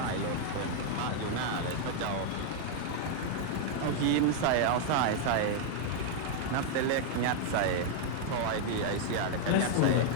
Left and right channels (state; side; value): different; both; correlation 0.00